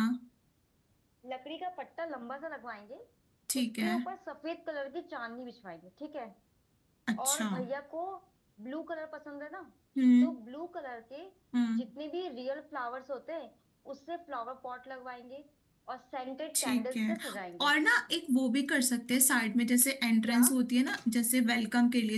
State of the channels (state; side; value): identical; both; correlation 1.00